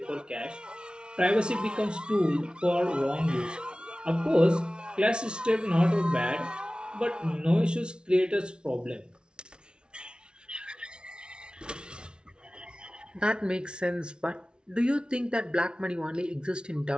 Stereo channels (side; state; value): left; late; 0.056 ms